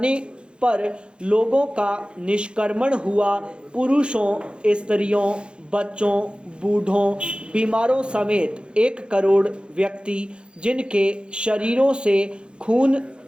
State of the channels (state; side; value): late; left; 0.054 ms